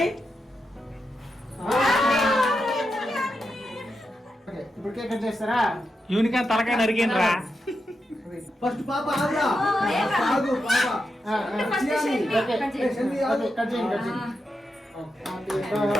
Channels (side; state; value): both; normal; correlation 0.87